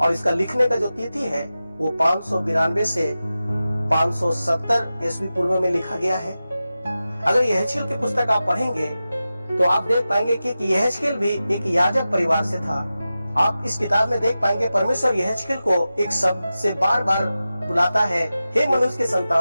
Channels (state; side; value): inverted; both; correlation -0.94